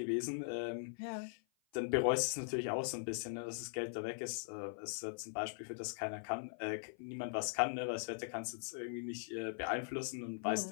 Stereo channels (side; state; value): right; silent; 50 dB below the other